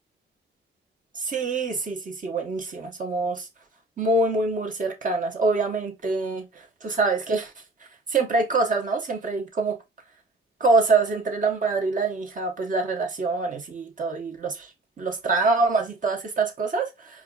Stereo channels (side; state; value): left; quieter; 3.0 dB